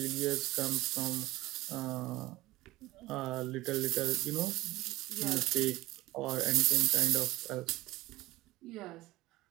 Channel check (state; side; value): quieter; left; 18.1 dB